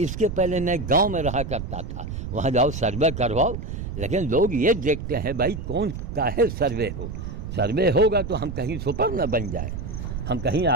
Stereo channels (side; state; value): right; noise; rumble, 6 dB below the sound